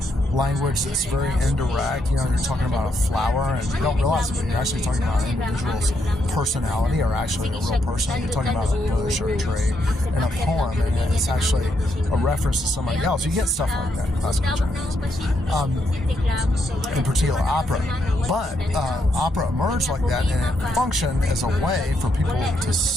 language that's very indirect. You're talking about a flower, and you don't realize it, but you're actually talking about an individual's personality, or actually a real person. You're talking about a bush or a tree in a poem, and it's actually a reference to somebody else. You get stuff like that in classical Chinese, in particular opera. But opera emerged like that, and it functioned as a way for people to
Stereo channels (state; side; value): normal; both; correlation 0.78